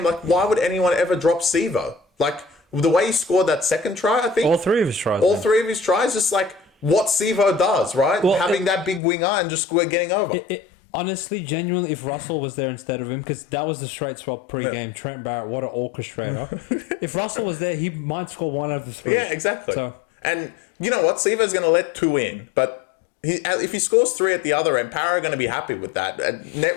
like, why would anyone ever drop Sivo? Like, the way he scored that second try, I think. All 3 of his tries. Three of his tries, just like what Sivo does, right? Well, having that big winger and just getting over. Honestly, genuinely, if Russell was there instead of him, because that was the straight swap pre-game, Trent Barrett, what an orchestrator. If Russell was there, he might score 1 out of the 3. Yeah, exactly. So, and you know what? Sivo's going to let 2 in, but if he scores 3 at the other end, Para are going to be happy with that. And net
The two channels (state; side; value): drops out; right; at 9.0 s